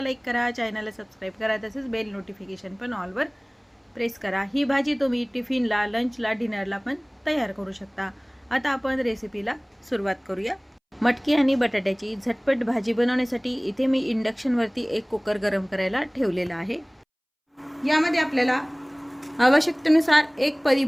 लाईक करा, चॅनलला सबस्क्राईब करा, तसेच बेल नोटिफिकेशन पण ऑलवर प्रेस करा। ही भाजी तुम्ही टिफिनला, लंचला, डिनरला पण तयार करू शकता। आता आपण रेसिपीला सुरुवात करूया। मटकी आणि बटाट्याची झटपट भाजी बनवण्यासाठी इथे मी इंडक्शनवरती एक कुकर गरम करायला ठेवलेला आहे। यामध्ये आपल्याला आवश्यकतेनुसार एक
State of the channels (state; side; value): identical; both; correlation 1.00